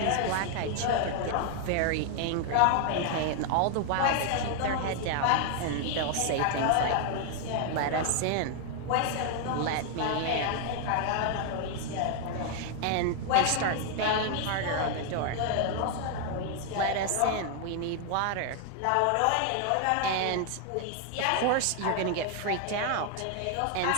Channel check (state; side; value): different; both; correlation 0.00